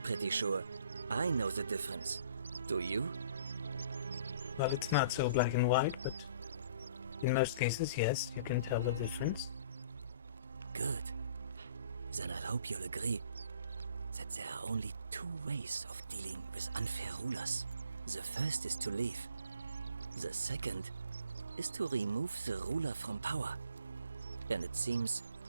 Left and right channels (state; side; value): inverted; both; correlation -0.54